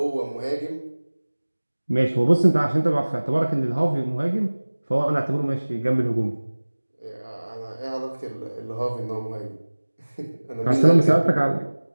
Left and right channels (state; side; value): inverted; both; correlation -1.00